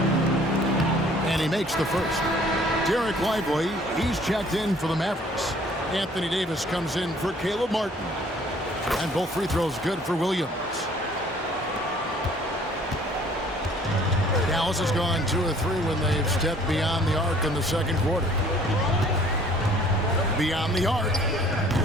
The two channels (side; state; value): both; normal; correlation 0.56